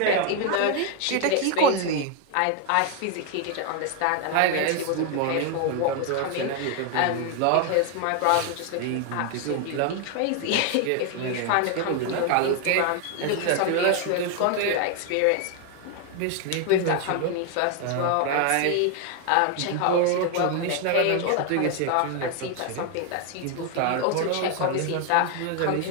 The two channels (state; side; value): different; both; correlation 0.01